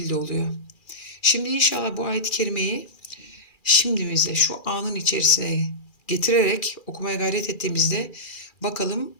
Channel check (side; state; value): right; late; 2.4 ms